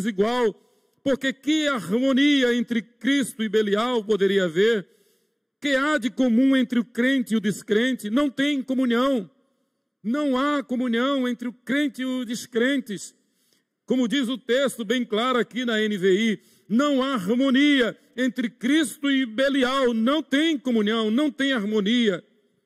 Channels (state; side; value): identical; both; correlation 1.00